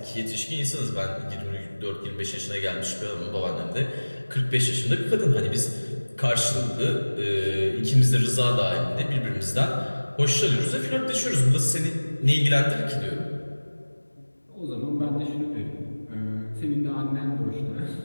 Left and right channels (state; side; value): inverted; both; correlation -1.00